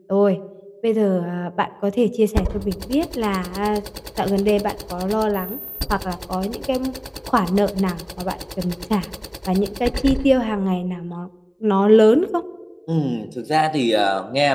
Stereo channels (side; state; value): both; identical; correlation 1.00